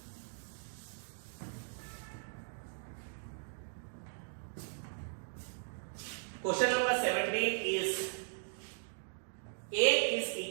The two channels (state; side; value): silent; left; digital silence